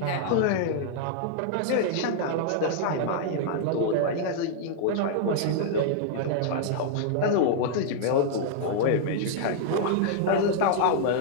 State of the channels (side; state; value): both; different; correlation -0.01